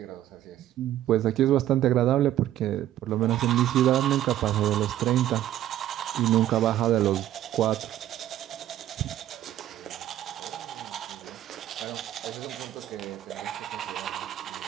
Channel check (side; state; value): left; quieter; 12.7 dB